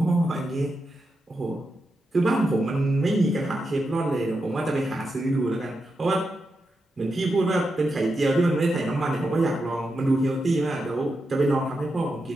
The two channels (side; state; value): both; normal; correlation 0.87